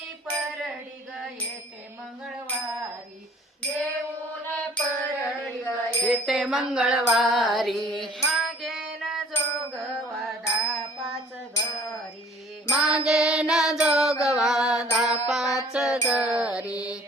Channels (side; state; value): both; normal; correlation 0.53